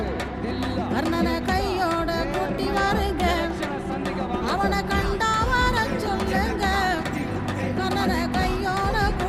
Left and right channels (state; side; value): identical; both; correlation 1.00